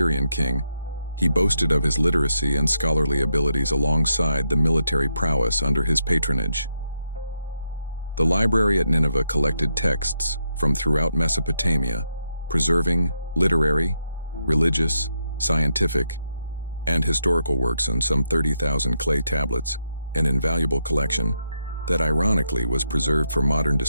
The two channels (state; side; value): inverted; both; correlation -0.82